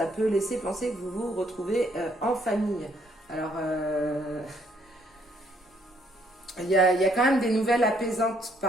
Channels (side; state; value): both; normal; correlation 0.68